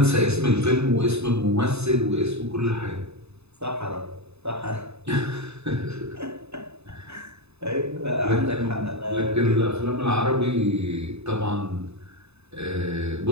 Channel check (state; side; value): late; left; 0.80 ms